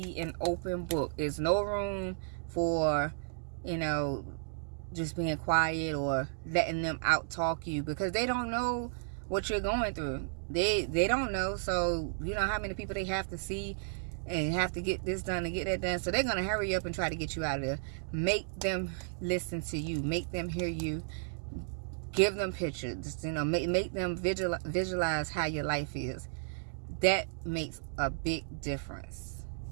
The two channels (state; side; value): silent; left; digital silence